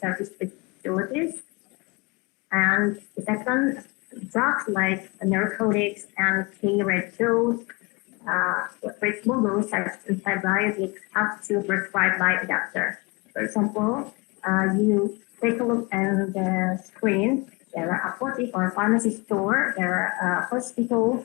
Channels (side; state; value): right; quieter; 27.7 dB